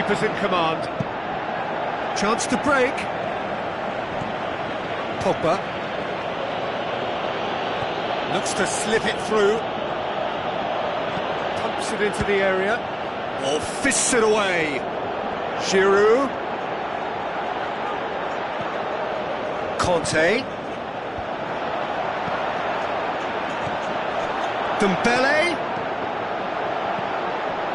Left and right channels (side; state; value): both; identical; correlation 1.00